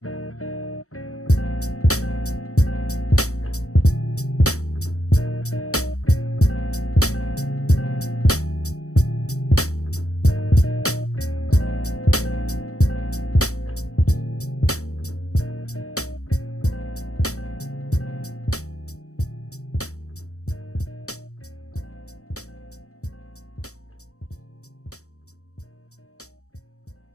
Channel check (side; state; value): right; late; 0.65 ms